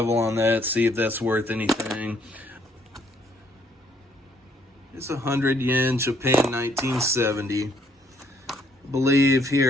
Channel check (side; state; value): both; normal; correlation 0.67